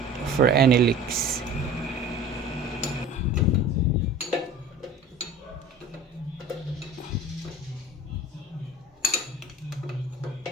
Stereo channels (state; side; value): normal; both; correlation 0.40